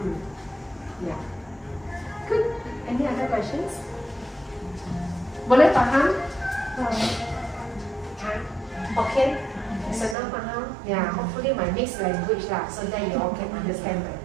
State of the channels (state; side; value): drops out; left; at 10.2 s